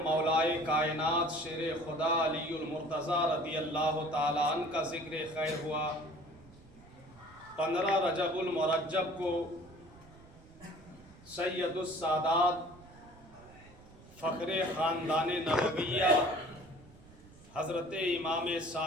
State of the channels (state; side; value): noise; right; rumble, 22 dB below the sound